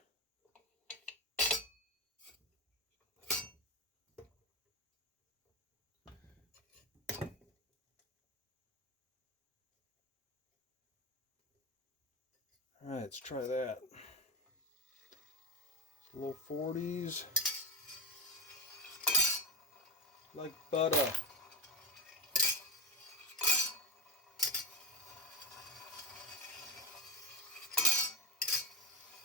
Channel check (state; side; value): normal; both; correlation 0.15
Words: All right, let's try that. Low 40s. Like butter.